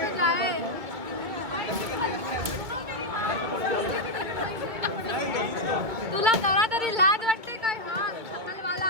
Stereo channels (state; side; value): late; left; 2.2 ms